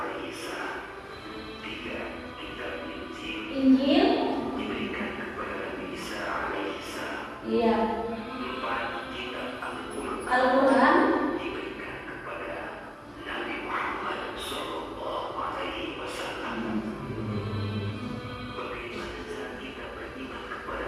Injil. Iya. Al-Quran.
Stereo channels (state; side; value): identical; both; correlation 1.00